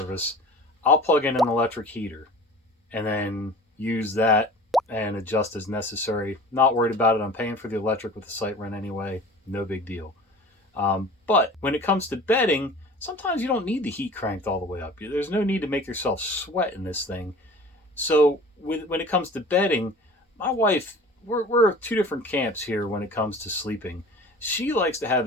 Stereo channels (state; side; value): normal; both; correlation 0.42